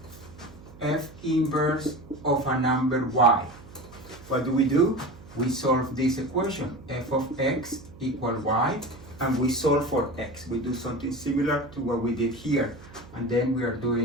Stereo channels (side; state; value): right; noise; hum, 20 dB below the sound